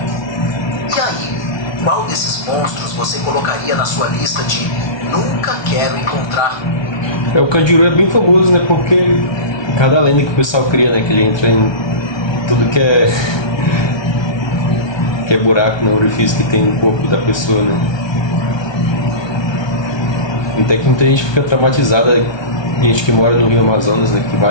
E aí, qual desses monstros você colocaria na sua lista de nunca quero encontrar? O Candiru é bem famoso, né, porque cada lenda que o pessoal cria, né, que ele entra em tudo que é buraco no orifício que tem no corpo da pessoa, né. Até que muita gente fica traumatizada, gente que mora no Rio Amazonas, né, que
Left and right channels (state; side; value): late; right; 1.2 ms